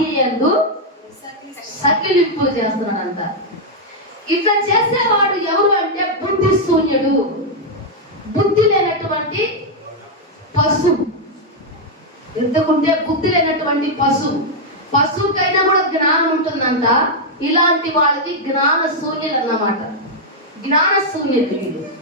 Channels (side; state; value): both; normal; correlation -0.02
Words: యందు సకిలింపులు చేస్తున్నాడంట. ఇట్లా చేసేవాడు ఎవరు అంటే బుద్ధి శూన్యుడు, బుద్ధి లేనటువంటి పశువు. ఎందుకుంటే బుద్ధి లేనటువంటి పశువుకైనా కూడా జ్ఞానం ఉంటుందంట. ఇలాంటి వాళ్ళకి జ్ఞాన శూన్యులు అన్నమాట. జ్ఞాన శూన్యులు వీళ్ళు.